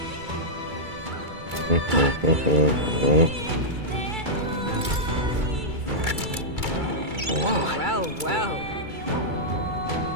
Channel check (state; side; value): late; left; 2.3 ms